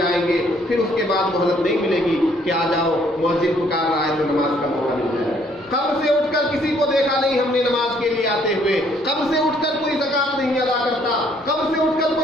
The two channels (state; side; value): normal; both; correlation 0.65